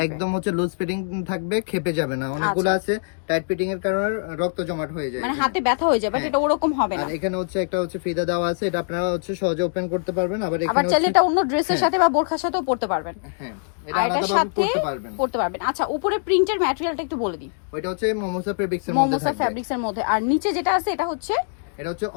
একদম হচ্ছে লুজ ফিটিং থাকবে, খেপে যাবে না। অনেকগুলো আছে টাইট ফিটিং এর কারণে রক্ত জমাট হয়ে যায়, মানে হাতে ব্যথা হয়ে যায়, বাট এটা ওরকম হবে না। আর এখানে হচ্ছে একটা হচ্ছে ফিতা দেওয়া আছে, এটা আপনারা হচ্ছে সহজে ওপেন করতে পারবেন। আবার এখানে চাইলে এটা অন্য ড্রেসের সাথে বা বোরখার সাথেও পরতে পারবেন। হ্যাঁ, এটা আলাদাভাবে পরতে পারবেন। আচ্ছা, উপরে প্রিন্টের ম্যাটেরিয়ালটা একটু বলে দিই। ওইটা হচ্ছে মোমোসা ফেব্রিক্সের মধ্যে থাকবে। মোমোসা ফেব্রিক্সের মধ্যে। আর নিচে যেটা আছে এটা হচ্ছে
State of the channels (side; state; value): right; silent; digital silence